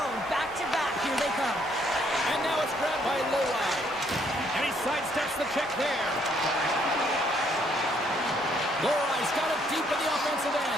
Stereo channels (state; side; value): noise; right; rumble, 25 dB below the sound